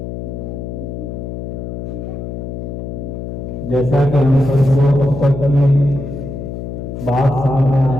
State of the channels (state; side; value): noise; left; hum, 7 dB below the sound